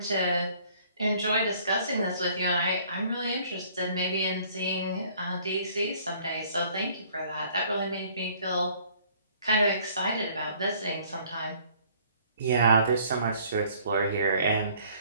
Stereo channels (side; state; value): both; inverted; correlation -0.58